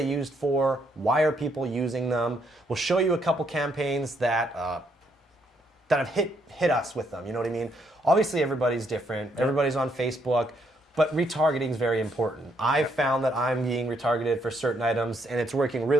used for? Why are people using them? We'll show you a couple campaigns that have hit us with them, you know what I mean? Obviously, everybody's different. Everybody's on Facebook, but retargeting is very important. I've found that I'm being retargeted for certain items, and it's working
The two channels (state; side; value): normal; both; correlation 0.73